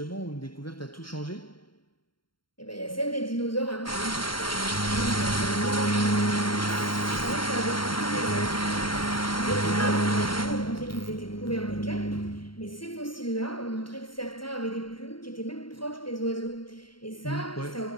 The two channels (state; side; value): late; right; 0.73 ms